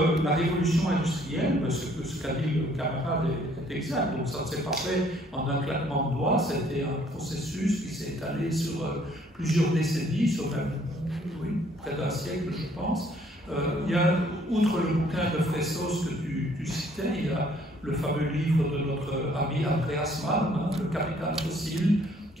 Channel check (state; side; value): normal; both; correlation 0.62